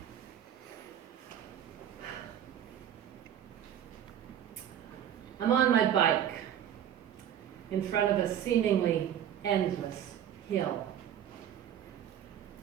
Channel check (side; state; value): left; quieter; 10.1 dB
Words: I'm on my bike in front of a seemingly endless hill.